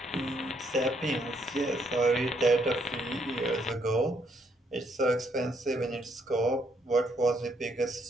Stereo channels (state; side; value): normal; both; correlation 0.72